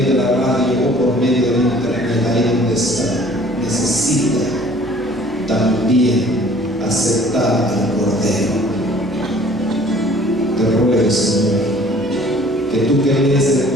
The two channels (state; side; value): normal; both; correlation 0.53